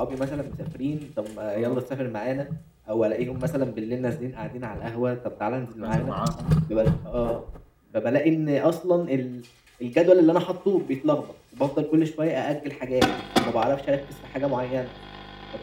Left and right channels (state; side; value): identical; both; correlation 1.00